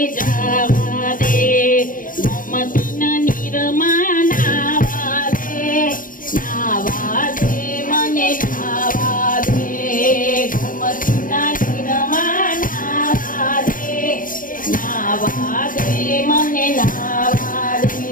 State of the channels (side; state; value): right; late; 0.40 ms